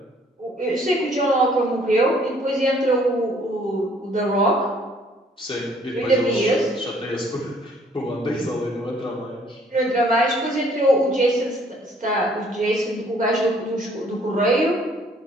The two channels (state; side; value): normal; both; correlation 0.61